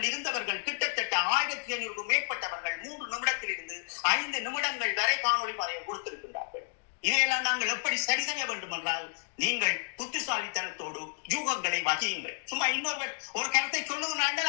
இருந்தவர்கள் கிட்டத்தட்ட 1500 மேற்பட்டவர்கள் 3 நிமிடத்தில் இருந்து 5 நிமிடங்கள் வரை காணொலி பதிவு கொடுத்திருக்கின்றார்கள். இதையெல்லாம் நாங்கள் எப்படி சரி செய்ய வேண்டும் என்றால், நீங்கள் புத்திசாலித்தனத்தோடு யூகங்களை வகியுங்கள். சும்மா இன்னொரு ஒரு கருத்தை சொல்லுங்கள்,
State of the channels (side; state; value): right; silent; digital silence